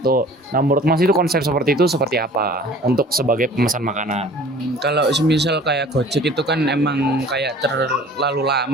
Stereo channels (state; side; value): normal; both; correlation 0.47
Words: Nah, menurut Mas itu konsep seperti itu seperti apa untuk sebagai pemesan makanan? Kalau semisal kayak Gojek itu kan emang kayak terlalu